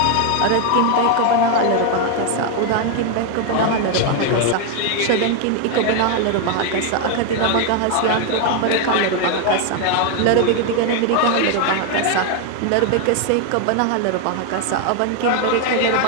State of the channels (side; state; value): both; different; correlation 0.01